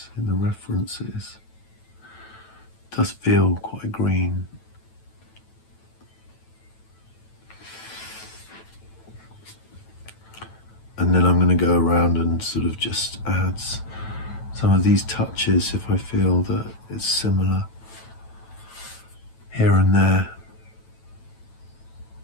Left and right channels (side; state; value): right; late; 9.1 ms